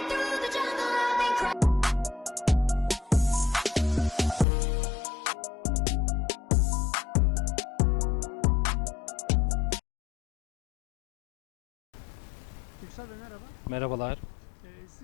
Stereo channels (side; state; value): right; drops out; at 4.5 s